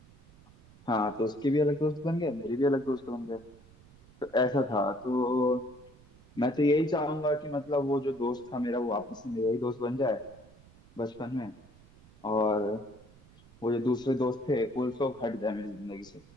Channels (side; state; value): right; noise; rumble, 25 dB below the sound